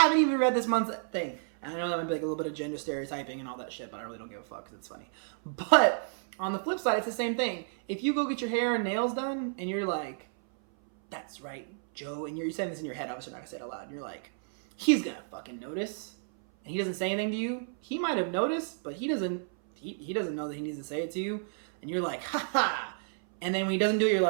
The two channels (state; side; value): silent; left; 57 dB below the other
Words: even read this month's thing. And I know that might be like a little bit of gender stereotyping and all that shit, but I really don't give a fuck because it's funny. But on the flip side, it's the same thing. If you go get your hair and nails done and you're like, that's right, Joe, and you're saying this in your head, obviously not gonna say it out loud, and you're like, he's gonna fucking notice, and he doesn't say anything to you. He might have noticed, but he doesn't know that he needs to say it to you, and you're like, ha, and then when he doesn't do it, you're